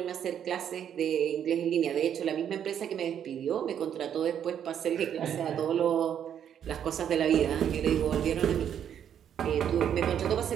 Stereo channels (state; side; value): quieter; left; 9.1 dB